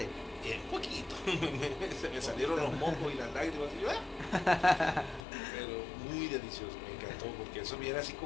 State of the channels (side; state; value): right; drops out; at 5.2 s